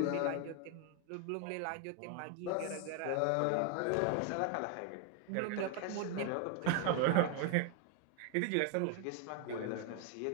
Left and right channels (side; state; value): both; different; correlation 0.01